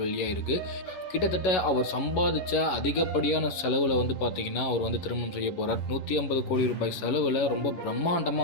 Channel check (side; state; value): right; late; 11 ms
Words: வெளியாக இருக்குது. கிட்டத்தட்ட அவர் சம்பாதிச்ச அதிகப்படியான செலவில் வந்து பார்த்தீங்கன்னா அவர் வந்து திருமணம் செய்ய போகிறார். 150 கோடி ரூபாய் செலவில் ரொம்ப